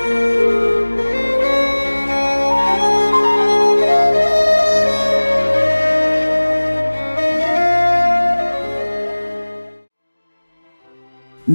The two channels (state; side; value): inverted; both; correlation -1.00